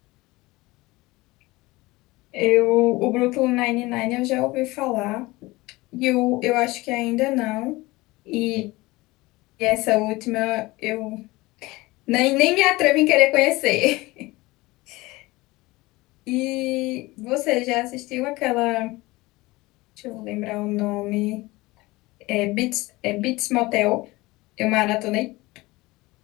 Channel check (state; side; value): quieter; right; 21.0 dB